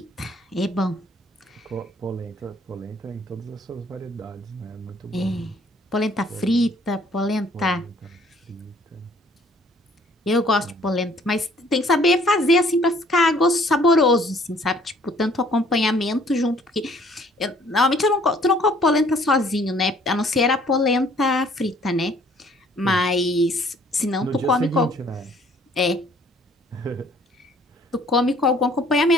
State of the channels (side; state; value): both; normal; correlation 0.59